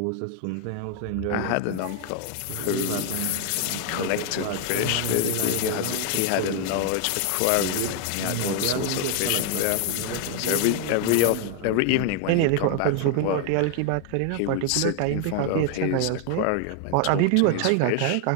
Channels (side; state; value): both; different; correlation 0.00